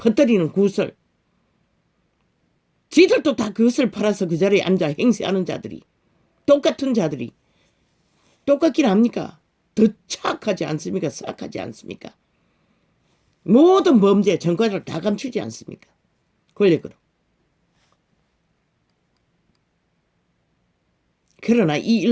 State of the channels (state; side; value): identical; both; correlation 1.00